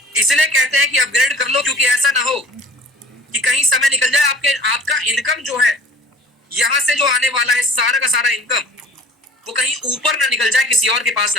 इसलिए कहते हैं कि अपग्रेड कर लो, क्योंकि ऐसा ना हो कि कहीं समय निकल जाए, आपका इनकम जो है यहां से जो आने वाला है सारा का सारा इनकम, वो कहीं ऊपर ना निकल जाए, किसी और के पास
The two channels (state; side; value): normal; both; correlation 0.47